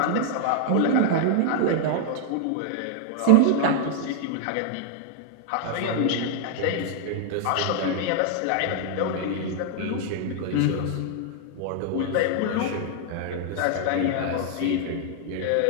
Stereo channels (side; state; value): both; different; correlation 0.00